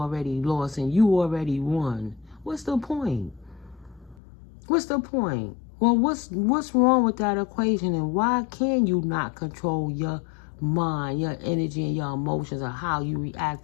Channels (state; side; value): drops out; right; at 4.2 s